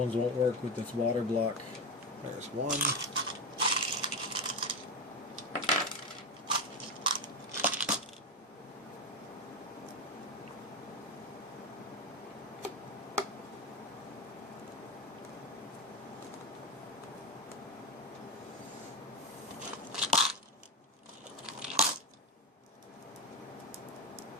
won't work with this water block. There's one.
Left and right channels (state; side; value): normal; both; correlation 0.15